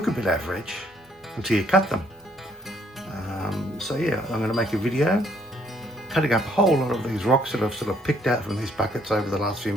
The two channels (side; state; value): both; normal; correlation 0.65